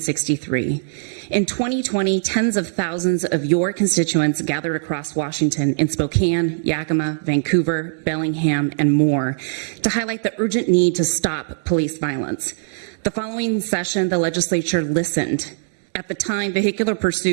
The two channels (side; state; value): left; silent; digital silence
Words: In 2020, tens of thousands of your constituents gathered across Washington in Spokane, Yakima, Vancouver, Bellingham, and more to highlight the urgent need to stop police violence. The following session, the legislature listened. At the time, vehicular